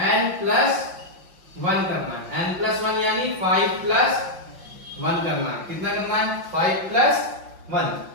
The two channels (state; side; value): late; left; 5.6 ms